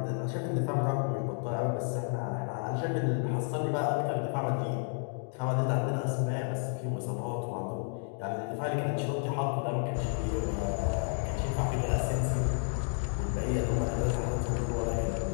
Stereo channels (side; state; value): right; silent; 57 dB below the other